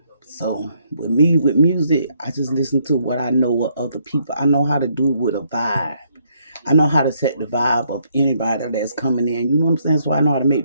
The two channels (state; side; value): inverted; both; correlation -0.71